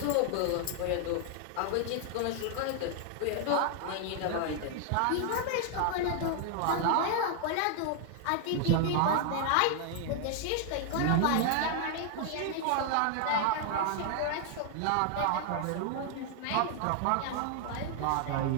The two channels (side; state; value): both; different; correlation 0.00